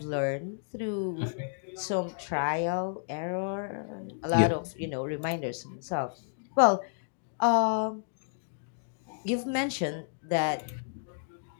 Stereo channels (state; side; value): silent; right; digital silence